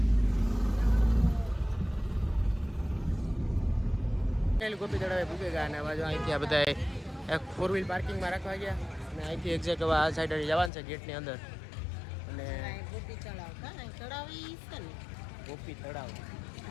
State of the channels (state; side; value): drops out; right; at 10.7 s